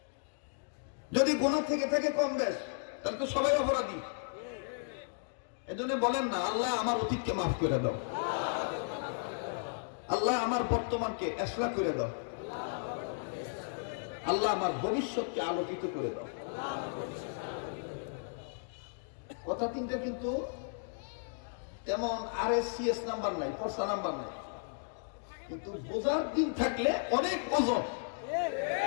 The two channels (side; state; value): right; silent; digital silence